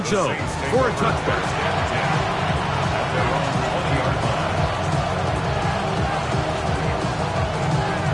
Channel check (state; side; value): identical; both; correlation 1.00